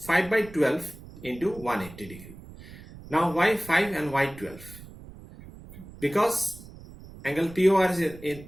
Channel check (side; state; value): right; noise; rumble, 17 dB below the sound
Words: 5/12 into 180 degree. Now why 5 and why 12? Because angle POR